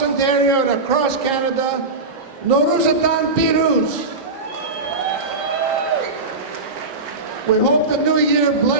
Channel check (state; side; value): quieter; left; 3.4 dB